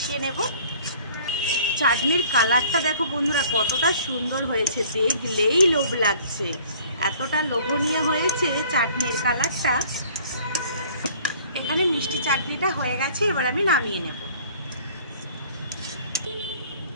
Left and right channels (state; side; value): inverted; both; correlation -0.53